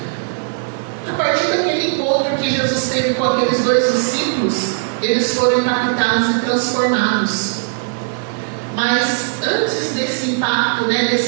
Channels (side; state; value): left; silent; digital silence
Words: A partir daquele encontro que Jesus teve com aqueles dois discípulos, eles foram impactados e transformados. Mas antes desse impacto,